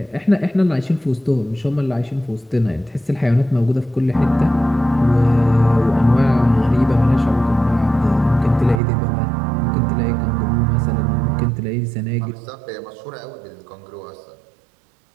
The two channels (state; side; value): drops out; left; at 8.8 s